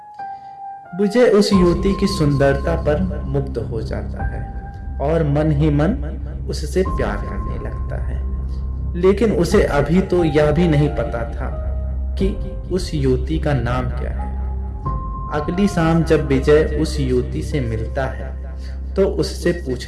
विजय उस युवती की सुंदरता पर मुग्ध हो जाता है और मन ही मन उससे प्यार करने लगता है, लेकिन उसे अभी तो यह भी नहीं पता था कि उस युवती का नाम क्या है। अगली शाम जब विजय उस युवती से मिलता है तो उससे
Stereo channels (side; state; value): both; identical; correlation 1.00